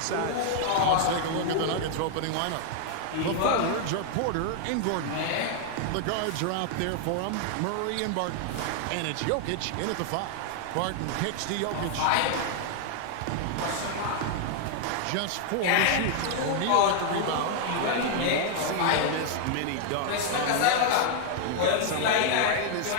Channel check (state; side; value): different; both; correlation 0.00